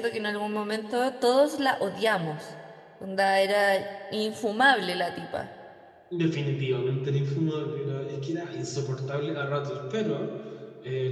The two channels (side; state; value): both; identical; correlation 1.00